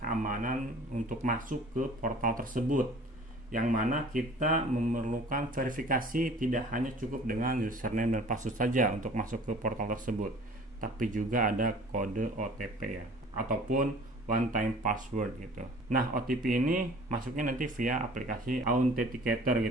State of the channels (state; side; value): normal; both; correlation 0.48